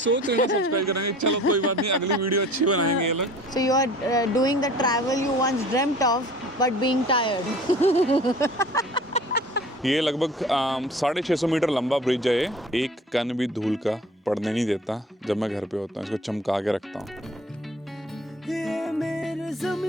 रहे सब्सक्राइब करेंगे। चलो कोई बात नहीं, अगली वीडियो अच्छी बनाएंगे ये लोग। So you are doing the travel you once dreamt of but being tired. ये लगभग 650 मीटर लंबा ब्रिज है। ये एक कण भी धूल का पड़ने नहीं देता। जब मैं घर पे होता हूँ इसको चमका के रखता हूँ। ये मेरे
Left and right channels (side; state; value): both; normal; correlation 0.46